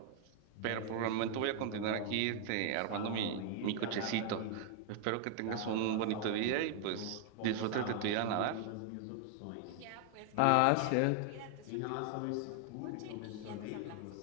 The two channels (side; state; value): both; different; correlation 0.00